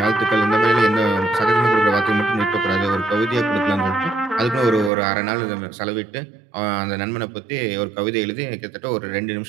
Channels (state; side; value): drops out; left; at 4.9 s